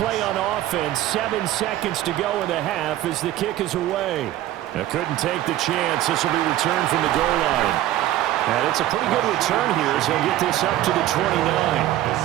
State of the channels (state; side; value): quieter; left; 13.9 dB